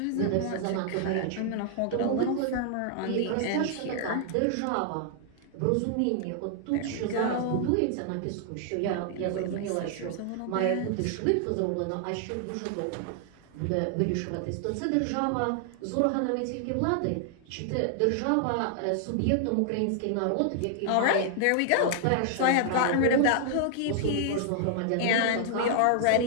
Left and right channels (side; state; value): both; different; correlation -0.01